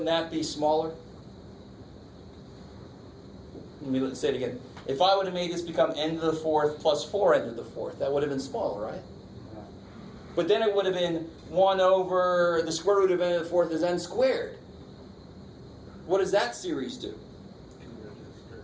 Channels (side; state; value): both; identical; correlation 1.00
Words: that be smaller? Let's say it again. If I would have made this become n to the 4th plus 4n to the 4th, that would have been smaller, right? But then it would have been 1 over the square root of n to the 4th is n squared. What does that series do?